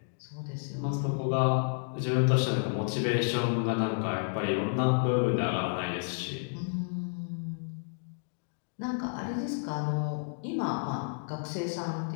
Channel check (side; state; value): right; silent; digital silence